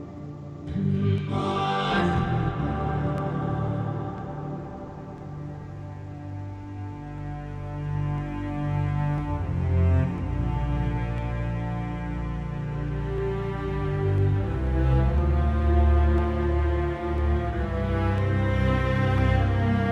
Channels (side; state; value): both; identical; correlation 1.00